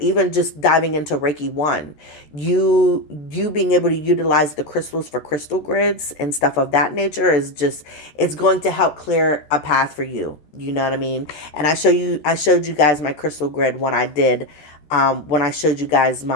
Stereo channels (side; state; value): right; late; 14 ms